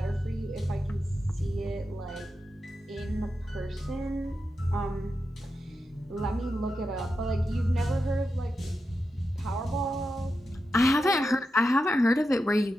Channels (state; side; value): normal; both; correlation 0.89